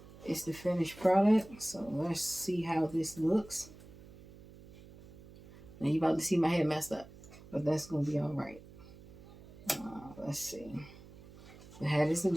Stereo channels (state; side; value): noise; right; hum, 20 dB below the sound